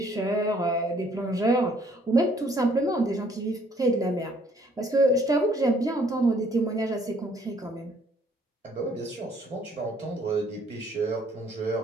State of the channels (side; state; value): both; normal; correlation 0.63